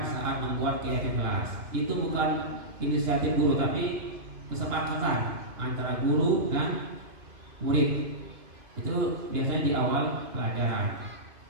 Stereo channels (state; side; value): late; left; 2.5 ms